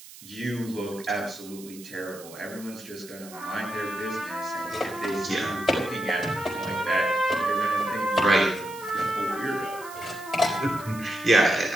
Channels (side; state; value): right; noise; hiss, 17 dB below the sound